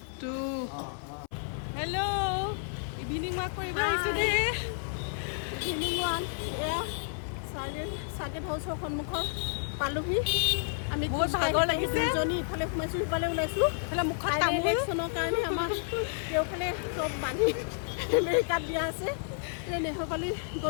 2. Hello. Evening walk for you guys today. Evening walk. Saget house সন্মুখৰ পালোহি আমি বহুত ভাগৰ লাগিছে জনি ইফালে সোমাইছো ইফালে ওলাইছো ইফালে মুখত তামোল ইলেকশ্যনৰ কাৰণে আমাৰ কেওফালে চব বান্ধি আমেৰিকাত দিয়া আছে নেহৰপালি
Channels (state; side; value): silent; right; 56 dB below the other